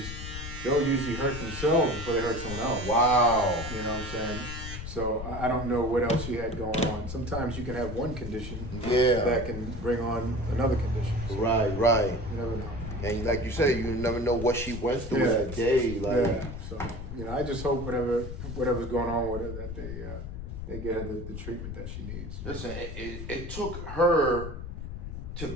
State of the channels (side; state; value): left; noise; rumble, 8 dB below the sound